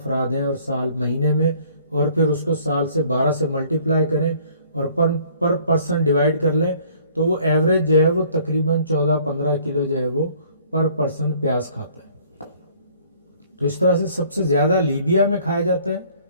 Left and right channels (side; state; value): both; inverted; correlation -0.58